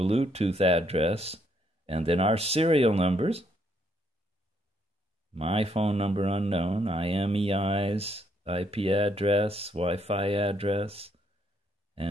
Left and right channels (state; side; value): normal; both; correlation 0.72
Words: address, and then our serial numbers. My phone number unknown, IMEI's IP address, Wi-Fi address,